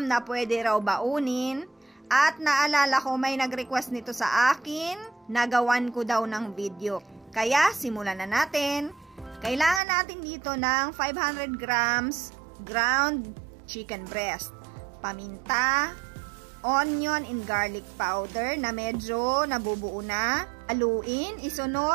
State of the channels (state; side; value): drops out; left; at 9.8 s